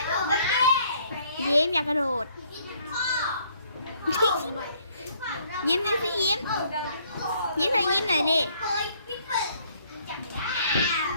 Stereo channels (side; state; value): both; inverted; correlation -0.64